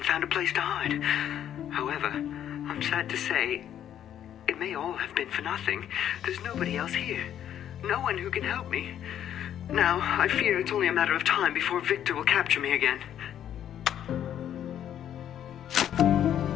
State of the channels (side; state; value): right; quieter; 10.4 dB